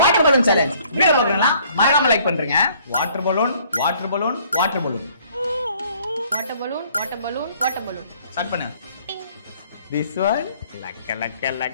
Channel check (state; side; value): inverted; both; correlation -0.60